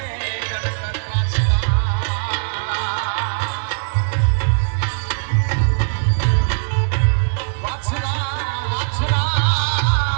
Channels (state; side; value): silent; left; 58 dB below the other